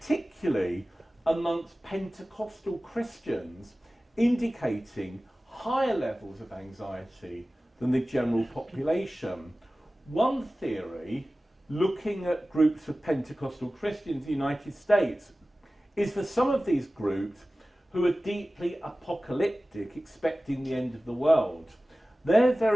amongst Pentecostal Christians, indicating higher levels of anxiety than the general population. One theory, looking at groups of Pentecostal Christians in the United States, is for some of these groups who are deeply apocalyptic, expecting the end of the world. They're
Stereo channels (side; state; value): both; normal; correlation 0.97